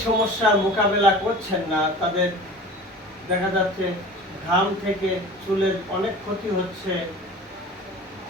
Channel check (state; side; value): normal; both; correlation 0.39